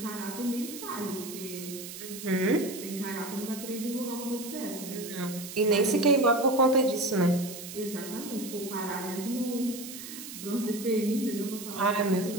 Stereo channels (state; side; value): noise; right; hiss, 11 dB below the sound